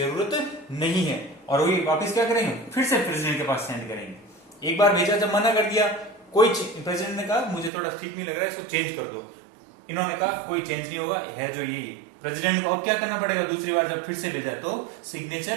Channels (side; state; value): left; drops out; at 7.7 s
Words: नहीं है, और वो वापस क्या करेंगे, फिर से प्रेसिडेंट के पास सेंड करेंगे। एक बार भेजा, जब मना कर दिया, कोई प्रेसिडेंट ने कहा मुझे थोड़ा ठीक नहीं लग रहा है, इसको चेंज कर दो, इन्होंने कहा कोई चेंज नहीं होगा, है जो ये प्रेसिडेंट को अब क्या करना पड़ेगा? दूसरी बार जब फिर से भेजा तो